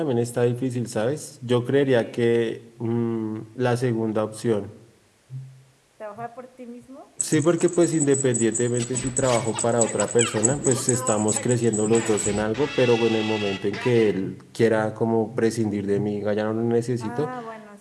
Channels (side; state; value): both; identical; correlation 1.00